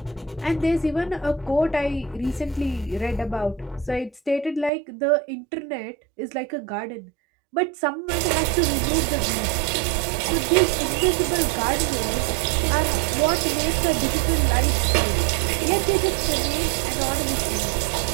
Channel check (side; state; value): left; drops out; at 4.7 s